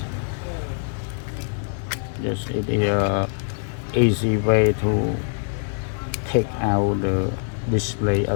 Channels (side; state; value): right; silent; digital silence